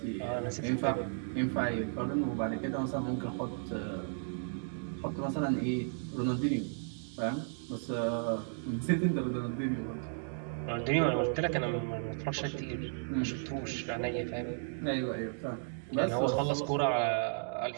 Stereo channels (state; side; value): silent; left; digital silence